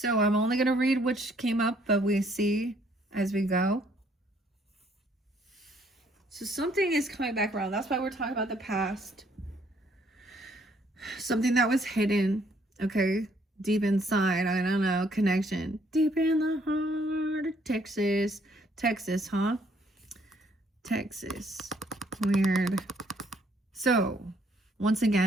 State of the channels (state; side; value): normal; both; correlation 0.66